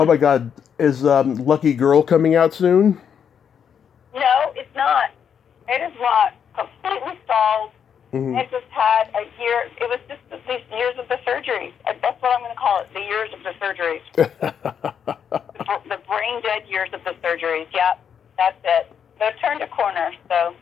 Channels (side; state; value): right; quieter; 7.8 dB